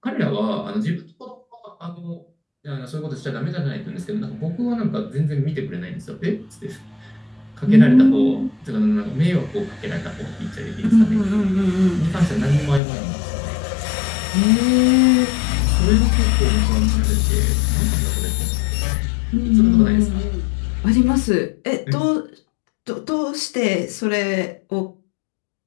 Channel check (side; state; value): right; drops out; at 12.8 s